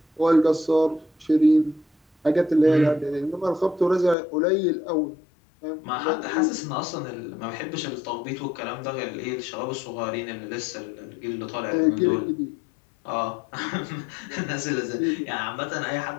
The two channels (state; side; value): drops out; right; at 4.2 s